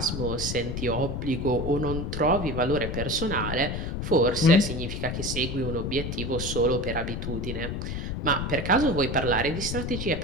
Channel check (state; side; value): noise; left; rumble, 4 dB below the sound